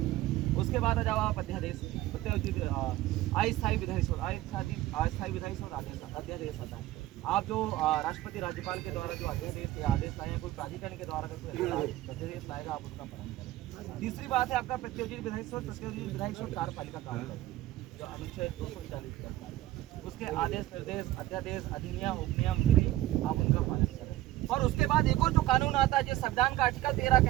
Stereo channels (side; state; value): left; quieter; 15.6 dB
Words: उसके बाद जब आप अध्यादेश अस्थायी विधायी स्रोत, अस्थायी विधायी स्रोत अध्यादेश आता है। आप जो राष्ट्रपति राज्यपाल के द्वारा जो अध्यादेश या आदेश लाए, कोई प्राधिकरण के द्वारा कोई अध्यादेश लाएगा आप उसका पालन करें। तीसरी बात है आपका प्रत्योजित विधायी स्रोत। प्रत्योजित विधायी स्रोत कार्यपालिका काम करती है, जो अनुच्छेद 240 करता है। उसके आदेश निर्देश अध्यादेश अधिनियम उपनियम विधि आप उनका पालन करें। और उसके बाद एक और जो कानून आता है जो संविधान का आर्टिकल 13